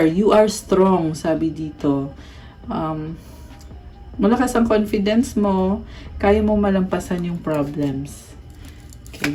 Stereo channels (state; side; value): identical; both; correlation 1.00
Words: you are strong, sabi dito. Malakas ang confidence mo. Kaya mo malampasan yung problems.